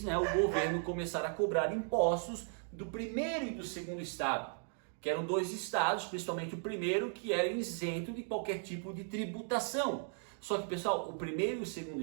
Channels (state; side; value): silent; left; 53 dB below the other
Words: né, o governo começar a cobrar impostos do primeiro e do segundo estado, que eram 2 estados, principalmente o primeiro, que era isento de qualquer tipo de tributação. Só que, pessoal, o primeiro e o segundo